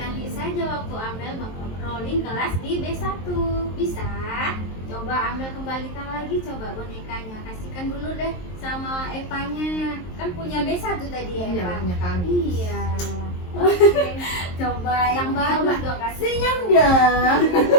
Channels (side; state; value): right; late; 23 ms